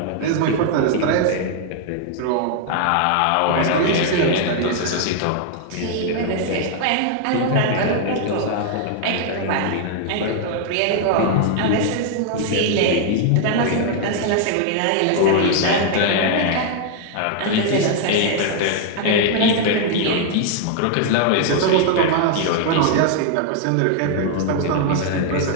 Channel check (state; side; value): different; both; correlation 0.00